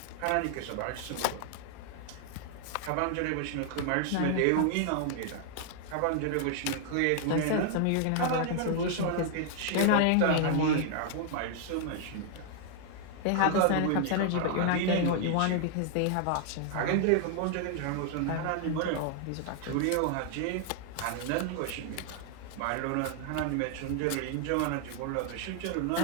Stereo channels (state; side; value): different; both; correlation 0.00